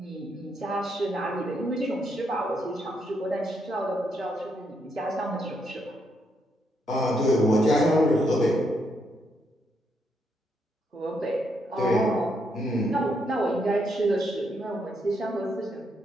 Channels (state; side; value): normal; both; correlation 0.77